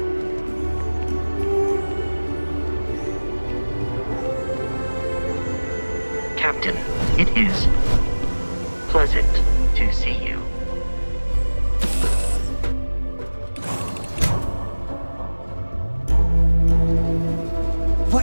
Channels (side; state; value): both; inverted; correlation -1.00